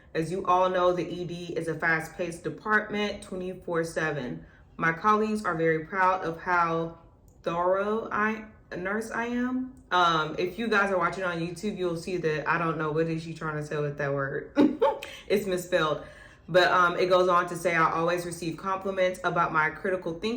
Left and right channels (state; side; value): identical; both; correlation 1.00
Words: As you all know, the ED is a fast-paced department 24/7. My colleagues are very proud of how thorough a nurse I am. If you guys are watching on YouTube, you'll see that I don't know what is she trying to say with that word. It's misspelled. But it goes on to say, I always receive compliments about my critical